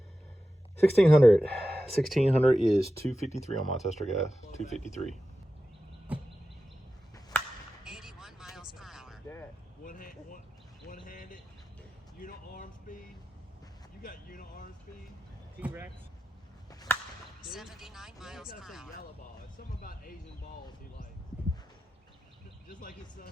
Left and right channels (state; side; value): normal; both; correlation 0.93